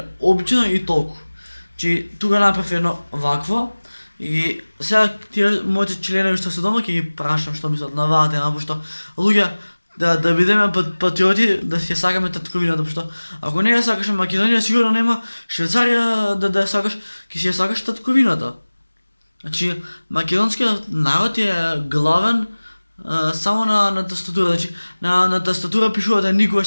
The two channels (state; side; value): inverted; both; correlation -1.00